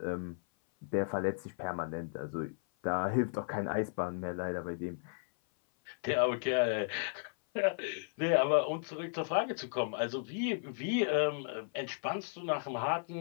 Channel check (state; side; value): silent; right; 55 dB below the other